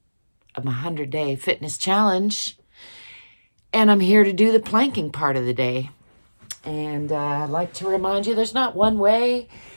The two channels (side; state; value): both; inverted; correlation -1.00